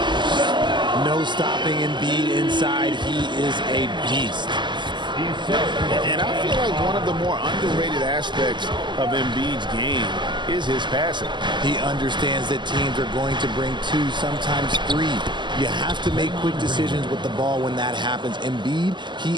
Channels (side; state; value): left; late; 0.22 ms